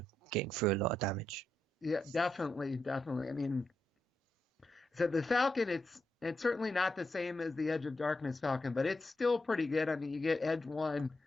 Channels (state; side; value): normal; both; correlation 0.84